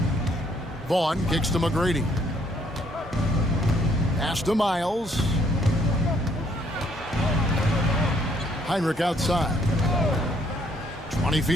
Vaughn kicks to McGrady. Pass to Miles. Hinrich outside. 20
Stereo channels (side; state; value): both; normal; correlation 0.67